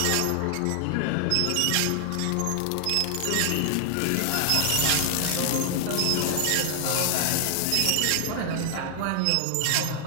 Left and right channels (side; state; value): both; different; correlation 0.00